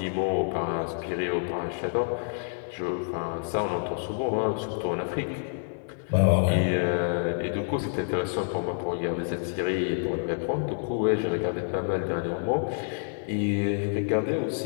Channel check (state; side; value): silent; right; digital silence